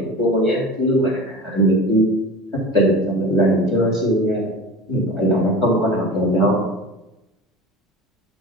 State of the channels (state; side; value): normal; both; correlation 0.34